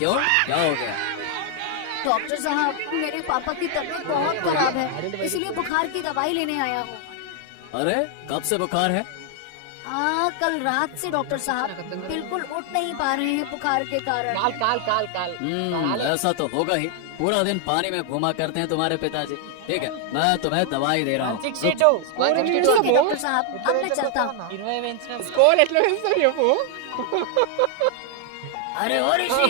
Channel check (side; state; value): both; different; correlation 0.00